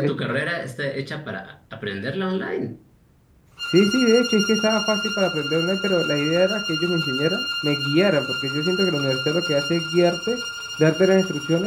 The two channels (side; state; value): both; identical; correlation 1.00